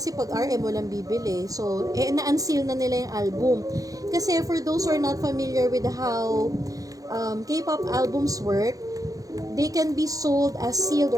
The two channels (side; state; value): left; late; 0.17 ms